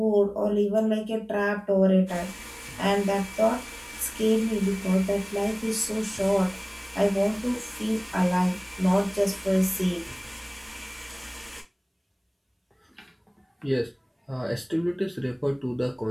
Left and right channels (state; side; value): identical; both; correlation 1.00